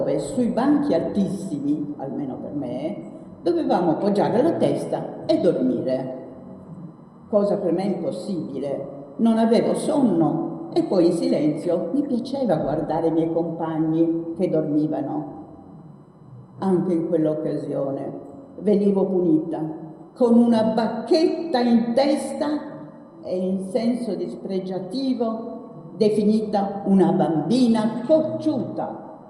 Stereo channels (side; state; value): both; identical; correlation 1.00